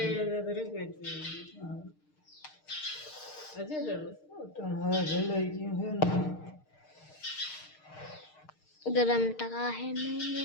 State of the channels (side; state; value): right; late; 6.5 ms